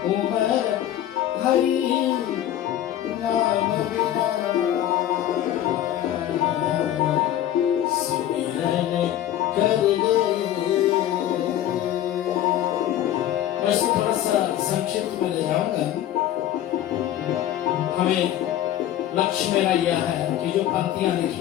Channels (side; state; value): right; quieter; 12.0 dB